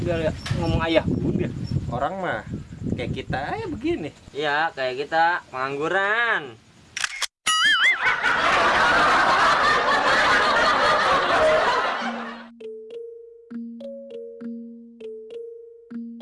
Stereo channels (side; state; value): both; identical; correlation 1.00